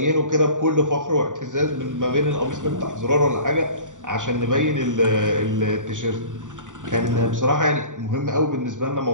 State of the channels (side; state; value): left; late; 0.87 ms